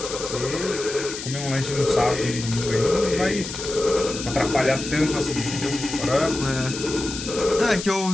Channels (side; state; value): left; noise; hiss, 8 dB below the sound